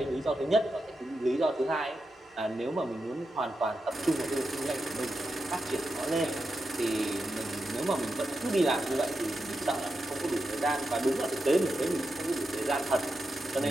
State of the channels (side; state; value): both; normal; correlation 0.88